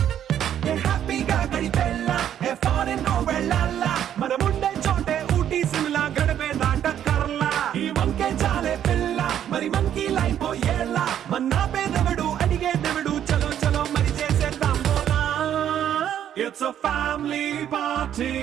హ్యాపీగా గడిపెల్లా ఫారెన్ వెళ్ళాలా మనం ఉండే చోటే ఊటీ సిమ్లా గడిపే దాటక్కర్లా ఈ వంకే చాలే పిల్ల మరి మరి మంకీ లైపోయేలా మన్నా పేదవడు అడిగేదెవడు చలో చలో మరి చేసేద్దాం బోలా It's a family party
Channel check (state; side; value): quieter; left; 10.2 dB